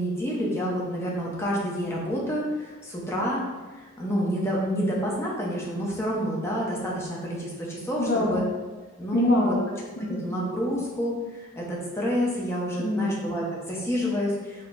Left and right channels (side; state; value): both; normal; correlation 0.58